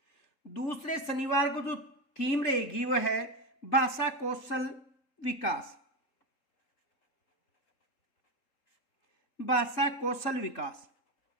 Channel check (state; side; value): late; right; 3.8 ms